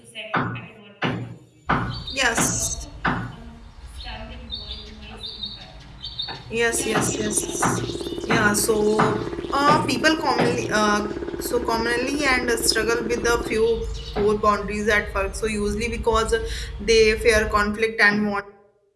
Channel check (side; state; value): both; identical; correlation 1.00